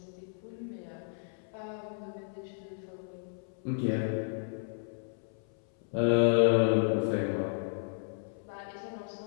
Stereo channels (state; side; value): silent; right; 56 dB below the other